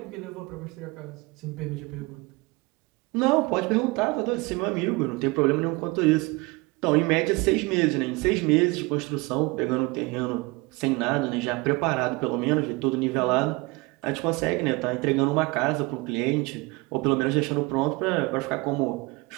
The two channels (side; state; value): left; quieter; 24.9 dB